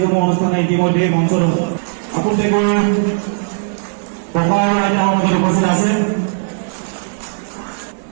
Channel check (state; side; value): silent; left; 68 dB below the other